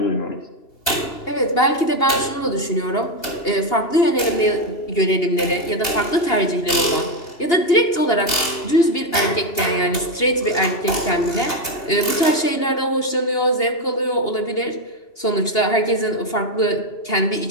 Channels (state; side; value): late; right; 2.8 ms